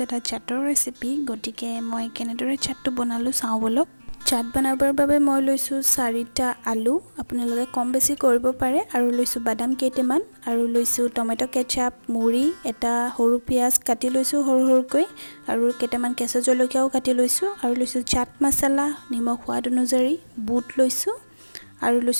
এটা চাটৰ ৰেচিপি। গতিকে মই কেনেদৰে চাটটো বনালোঁ চাওঁ ব'লক। চাট বনাবৰ বাবে মই লৈছোঁ 4টা আলু, আপোনালোকে কম বেছি কৰিব পাৰে, আৰু লৈছোঁ বাদাম কেইটামান, আৰু লৈছোঁ টমেটো কেচাপ, মুড়ি, এটা সৰু পিঁয়াজ কাটি লৈছোঁ সৰু সৰুকৈ, আৰু কেইটামান কেঁচা জলকীয়াও কাটি লৈছোঁ, আৰু লৈছোঁ চাট মছলা, নিমখ সোৱাদ অনুযায়ী, বুট লৈছোঁ, আৰু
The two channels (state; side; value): inverted; both; correlation -1.00